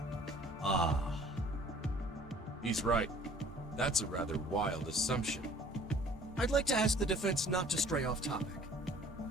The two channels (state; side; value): normal; both; correlation 0.52